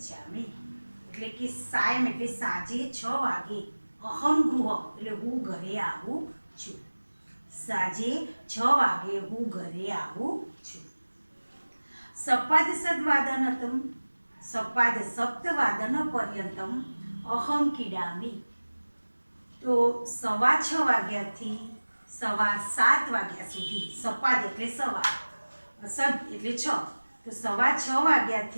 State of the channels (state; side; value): inverted; both; correlation -1.00